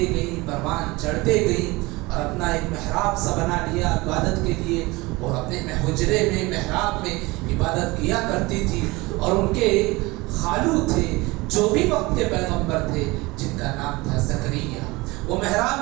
گئی, پروان چڑھتے گئی اور اپنا ایک محراب سا بنا لیا عبادت کے لیے, اور اپنے حجرے میں محراب میں عبادت کیا کرتی تھی. اور ان کے خالو تھے جو بھی وقت کے پیغمبر تھے جن کا نام تھا زکریا, وہ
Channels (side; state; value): left; quieter; 22.6 dB